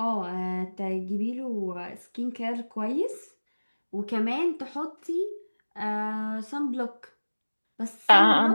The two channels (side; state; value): both; inverted; correlation -1.00